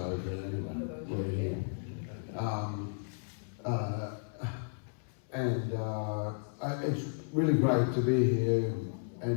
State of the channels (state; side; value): silent; right; 55 dB below the other